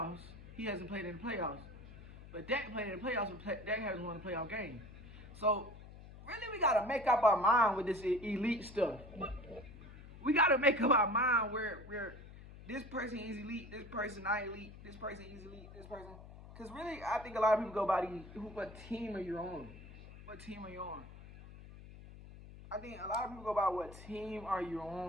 He hasn't played in the playoffs. But Dak played in the playoffs, but Dak hasn't won a playoff game. So really, we gotta make up our mind with this elite stuff. We gotta make up our mind where this person is elite, this person not elite, this person is elite, this person. Because really, I think a lot of people go by what team are you on? What team are you on? I think a lot of people go by what team are you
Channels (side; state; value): left; noise; hum, 16 dB below the sound